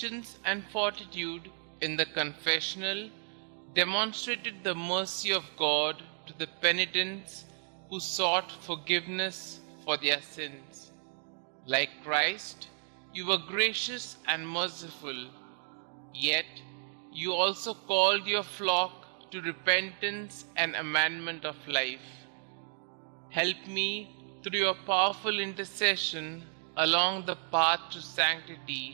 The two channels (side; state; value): left; silent; 56 dB below the other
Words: and fortitude in the confessional demonstrated the mercy of God to the penitents who sought forgiveness for their sins. Like Christ, you were gracious and merciful, yet you also called your flock to repentance and amendment of life. Help me, through your powerful intercession, along the path to